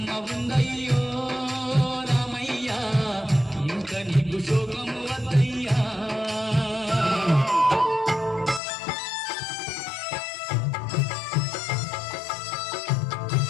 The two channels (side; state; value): right; drops out; at 8.6 s